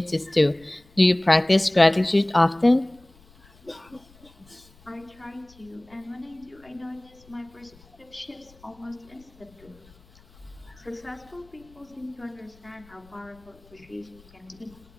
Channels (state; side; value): noise; left; rumble, 27 dB below the sound